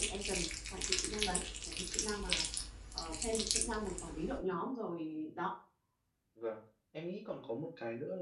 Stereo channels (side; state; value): both; identical; correlation 1.00